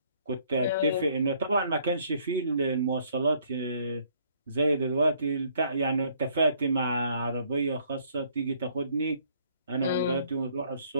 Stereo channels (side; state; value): both; inverted; correlation -0.64